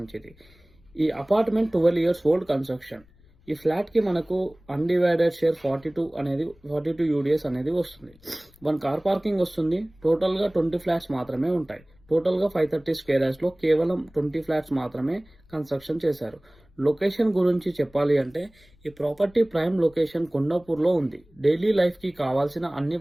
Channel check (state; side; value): noise; left; rumble, 28 dB below the sound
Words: ఈ అపార్ట్మెంట్ 12 ఇయర్స్ ఓల్డ్ కన్స్ట్రక్షన్. ఈ ఫ్లాట్కి మనకు అన్డివైడెడ్ షేర్ 42 యూడిఎస్ అనేది వస్తుంది. 1 కార్ పార్కింగ్ వస్తుంది. టోటల్గా 20 ఫ్లాట్స్ మాత్రమే ఉంటాయి. టోటల్గా 530 స్క్వేర్ యార్డ్స్లో కేవలం 20 ఫ్లాట్స్ మాత్రమే కన్స్ట్రక్షన్ చేశారు. లొకేషన్ గురించి చెప్పాలి అంటే ఈ ప్రాపర్టీ ప్రైమ్ లొకేషన్ కొండాపూర్లో ఉంది. డైలీ లైఫ్కి కావాల్సిన అన్ని